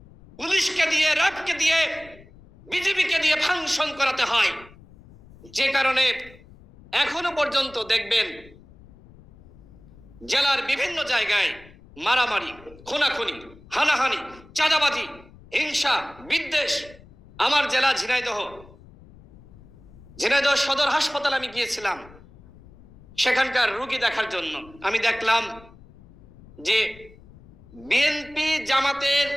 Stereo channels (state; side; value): noise; left; rumble, 23 dB below the sound